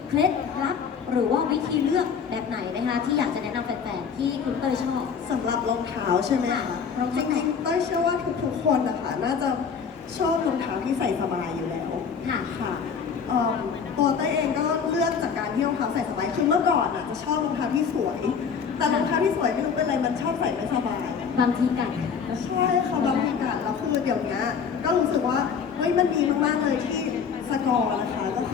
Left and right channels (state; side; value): quieter; right; 6.5 dB